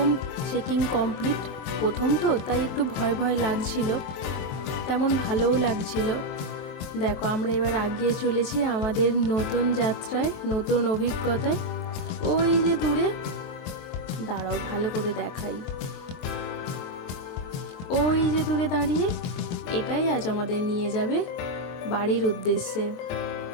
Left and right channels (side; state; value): right; late; 23 ms